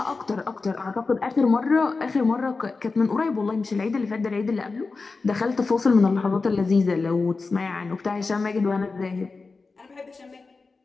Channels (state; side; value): quieter; right; 4.1 dB